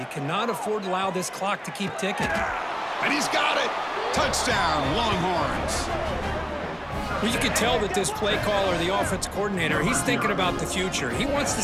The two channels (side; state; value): both; identical; correlation 1.00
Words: cannot afford to allow this clock to keep ticking. And he's got it. Touchdown, Longhorns. Well, you can tell that this play caller, the offense coordinator, he's thinking about the future. He wants to